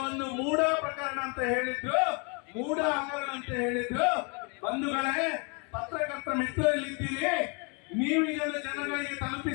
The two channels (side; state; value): right; quieter; 34.2 dB